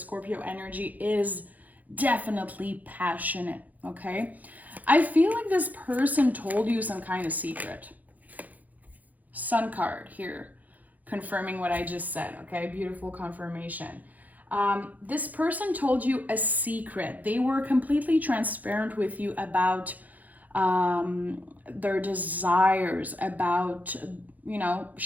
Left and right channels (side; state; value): left; late; 0.080 ms